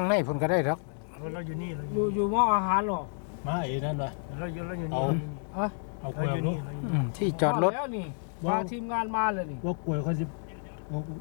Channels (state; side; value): silent; right; 55 dB below the other